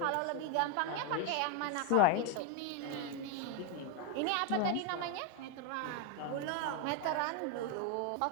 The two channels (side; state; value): both; different; correlation 0.01